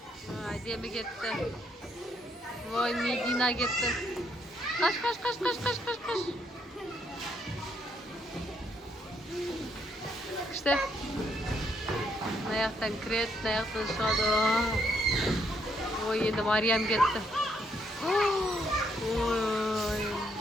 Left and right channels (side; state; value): both; normal; correlation 0.73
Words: Ademi ketdi. Voy, Medina ketdi. Qash. İşte. Ayaktan kiret, ayaktan шығады. Oy, endi Maryam ketdi. Oy.